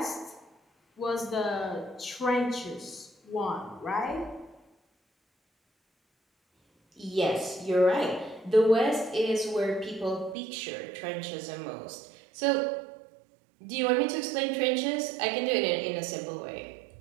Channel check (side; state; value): left; drops out; at 10.4 s